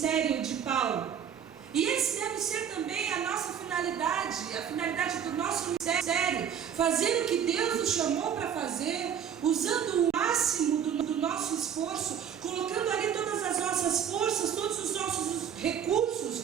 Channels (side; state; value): left; quieter; 8.4 dB